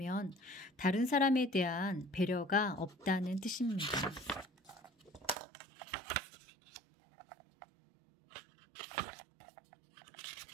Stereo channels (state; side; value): drops out; left; at 5.4 s